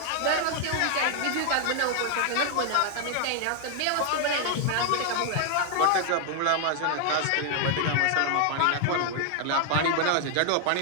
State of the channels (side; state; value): both; different; correlation 0.00